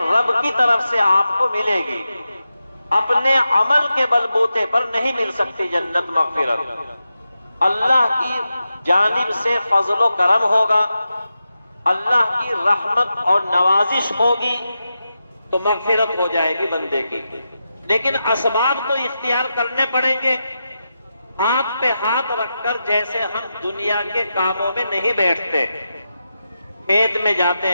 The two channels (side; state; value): both; inverted; correlation -0.89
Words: رب کی طرف سے آپ کو ملے گی، اپنے عمل کے بلبوتے پر نہیں مل سکتی جنت مغفرت، اللہ کی جانب سے فضل و کرم ہوگا، اللہ کی رحمت اور نوازش ہوگی تو مغفرت ہو جائے گی بندے کی۔ لیکن اسباب تو اختیار کرنے پڑیں گے، ہاتھ پہ ہاتھ رکھ کر، جیسے ہم دنیا کے کاموں میں نہیں بیٹھتے، کھیت میں